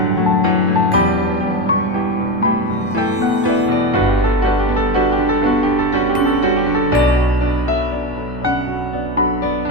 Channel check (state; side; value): normal; both; correlation 0.18